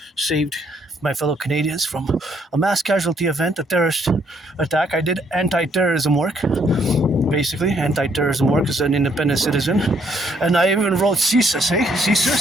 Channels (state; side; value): normal; both; correlation 0.69